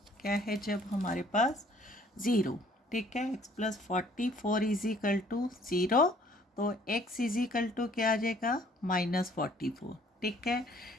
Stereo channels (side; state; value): both; normal; correlation 0.58